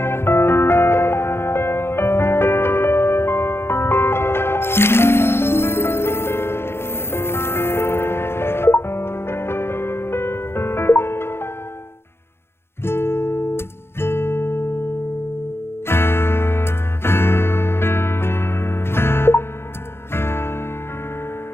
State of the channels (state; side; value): late; right; 0.12 ms